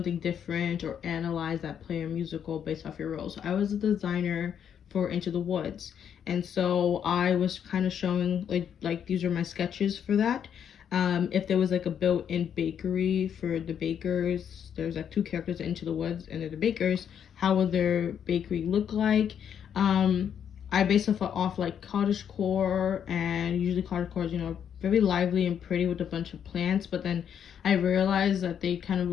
different or analyze that play or musical based off your role. So I was a designer for Into the Woods, and so I was kind of showing like these are my sketches for that. If there was like a built-in bakery for the bakers, there's like two characters in Into the Woods and they're the bakers, how would their bakery look like? I base it off like cottagecore, and usually cottagecore is, you know, very lively and pretty with a bunch of plants, but then I realized that they kind of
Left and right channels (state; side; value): quieter; right; 8.5 dB